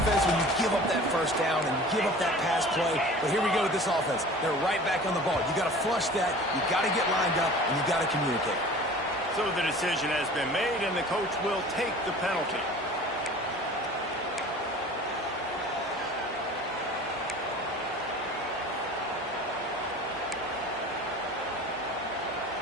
when you give up that 1st down and you give up that pass play. But here we go with this offense. They're right back on the ball. You got to flush that. You got to get lined up, and you got to communicate. So the decision has been made, and the coach will take the penalty.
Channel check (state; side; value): normal; both; correlation 0.42